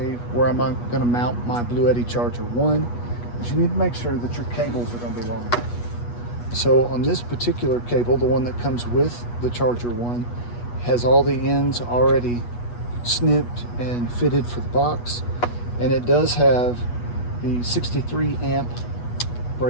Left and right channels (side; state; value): right; late; 8.3 ms